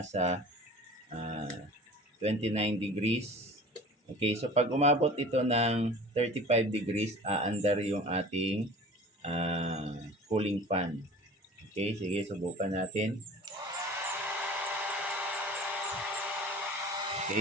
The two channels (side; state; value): both; normal; correlation 0.41